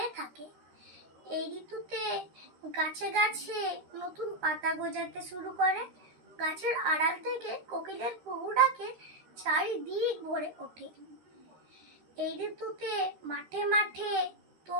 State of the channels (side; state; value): left; late; 13 ms